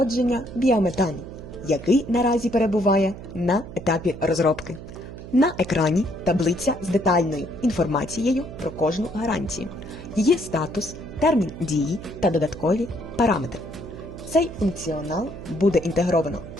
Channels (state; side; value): noise; right; hum, 13 dB below the sound